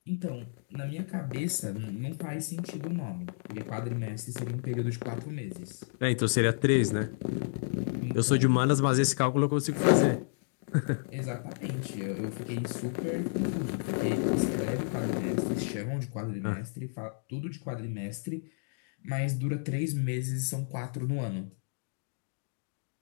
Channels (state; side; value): silent; right; digital silence